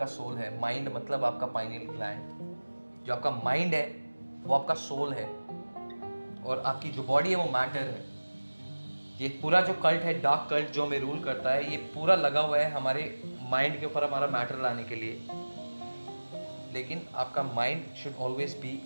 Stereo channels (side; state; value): both; inverted; correlation -1.00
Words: soul है। Mind मतलब आपका pineal gland. जो आपका mind है वो आपका सोल है और आपकी जो बॉडी है वो मैटर है। ये पूरा जो कल्ट है, डार्क कल्ट जो हमें रूल करता है, ये पूरा लगा हुआ है हमारे माइंड के ऊपर, हमारा मैटर लाने के लिए। लेकिन आपका mind should always be